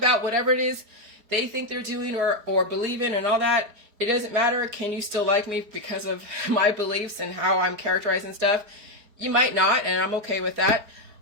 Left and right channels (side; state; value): left; late; 4.8 ms